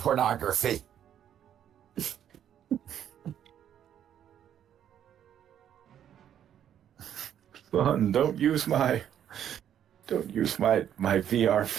Son, don't use my VR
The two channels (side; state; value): left; quieter; 9.9 dB